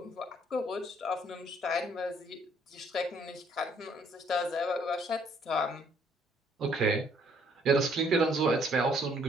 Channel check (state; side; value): normal; both; correlation 0.64